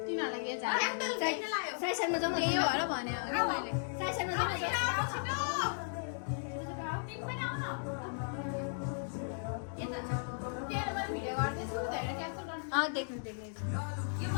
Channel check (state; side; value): silent; right; digital silence